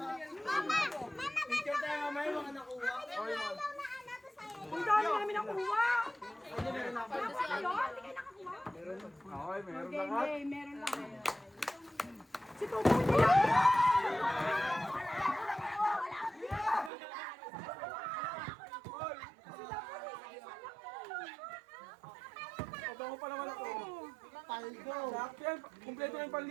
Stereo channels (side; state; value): left; drops out; at 16.9 s